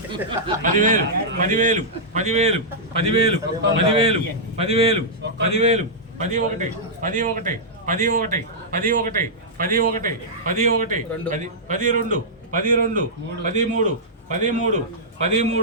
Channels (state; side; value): normal; both; correlation -0.11